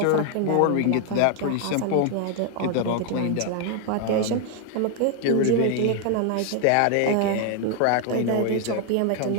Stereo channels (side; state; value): both; different; correlation 0.00